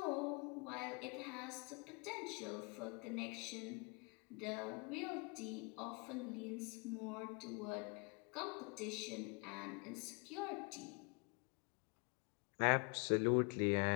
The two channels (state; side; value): quieter; right; 32.3 dB